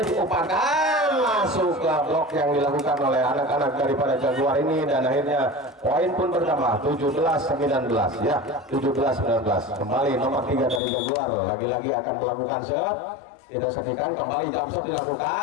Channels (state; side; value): drops out; right; at 10.8 s